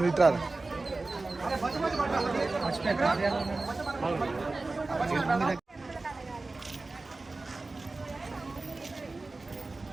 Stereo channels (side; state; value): left; quieter; 3.4 dB